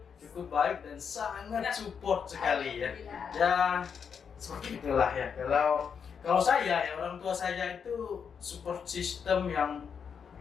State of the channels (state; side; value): quieter; right; 6.8 dB